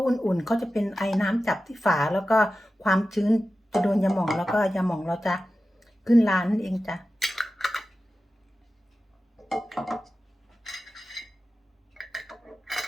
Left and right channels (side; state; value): both; normal; correlation 0.94